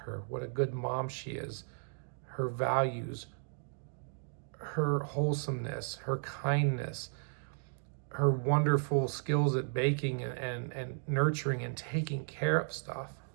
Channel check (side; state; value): left; silent; 55 dB below the other